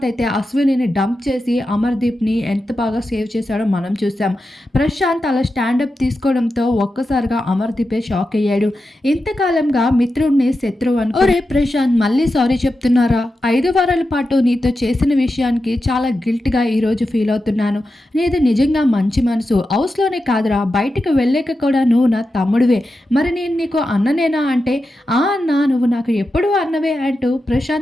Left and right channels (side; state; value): both; normal; correlation 0.90